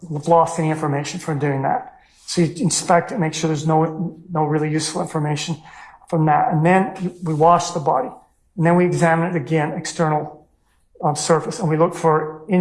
have lost any information from doing that. So you inspect it, make sure there's no really useful information from that. And then we wash the body. And then we examine it again, external surface. And we look for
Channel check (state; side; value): identical; both; correlation 1.00